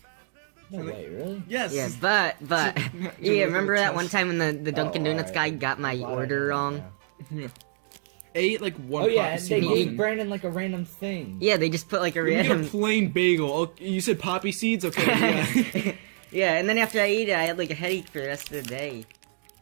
No way, really? Yes. Yeah, but yeah, remember that one time when the Dunkin' Oh, Donuts alright. guy got my Glad I order know wrong? now. I ate like one Oh yeah, poppy and seed they gave muffin. Brandon like a random thing. Yeah, they just put like a You get a random. plain bagel. Oh, you said poppy seeds? Okay. Yeah. Yeah, and then after I ate it, I had like a headache for the rest of the day.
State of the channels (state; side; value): silent; left; 60 dB below the other